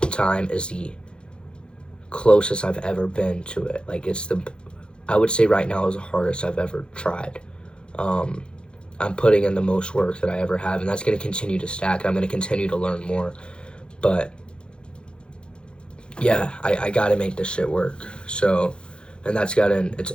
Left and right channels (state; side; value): late; right; 0.053 ms